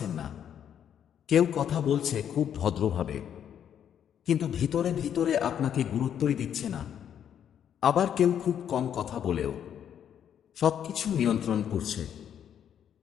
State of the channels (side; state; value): right; quieter; 9.2 dB